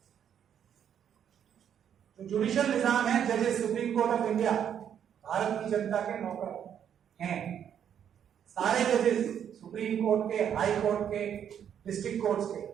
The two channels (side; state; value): left; quieter; 8.9 dB